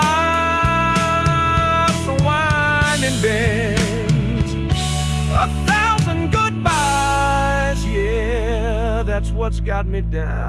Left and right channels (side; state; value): both; identical; correlation 1.00